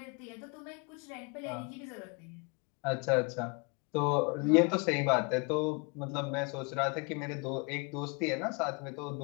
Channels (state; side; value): quieter; right; 31.5 dB